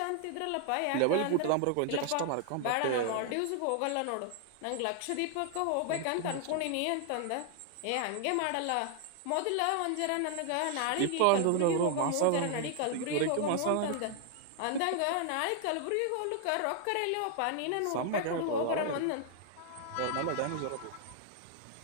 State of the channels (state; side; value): different; both; correlation 0.00